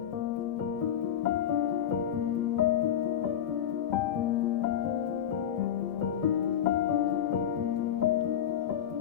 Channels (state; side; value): quieter; right; 9.8 dB